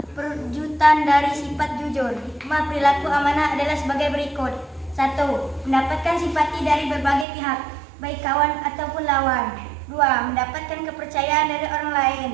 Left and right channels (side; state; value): left; drops out; at 7.2 s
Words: perwujudan dari sifat jujur. Hikmah perilaku amanah adalah sebagai berikut. 1. Mendapatkan simpati dari berbagai pihak, baik kawan ataupun lawan. 2. Mendapatkan kepercayaan dari orang lain.